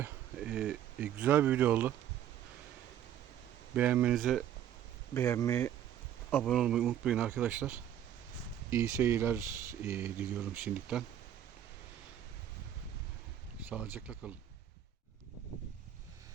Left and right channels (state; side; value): quieter; left; 10.5 dB